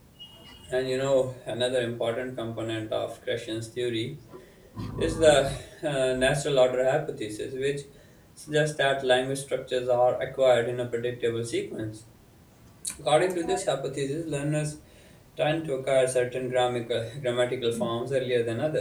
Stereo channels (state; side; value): identical; both; correlation 1.00